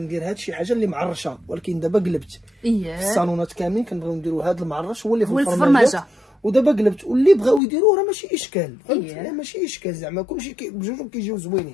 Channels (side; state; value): right; drops out; at 7.6 s